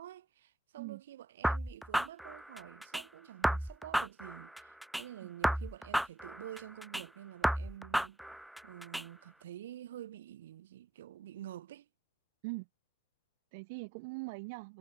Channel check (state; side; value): normal; both; correlation 0.86